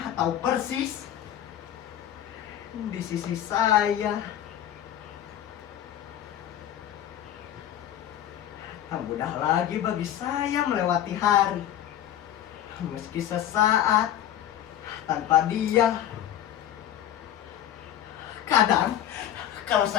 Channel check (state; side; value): quieter; right; 11.3 dB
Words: atau persis di sisi saya, tak mudah lagi bagi saya melewati hari, meski sesaat tanpa dia. Kadang kalau